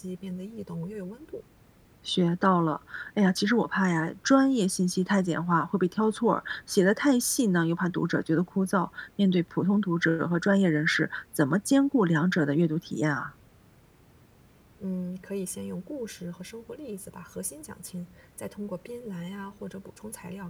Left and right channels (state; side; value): identical; both; correlation 1.00